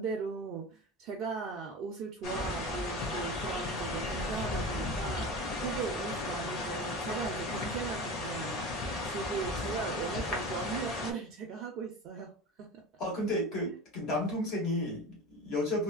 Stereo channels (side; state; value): both; normal; correlation 0.31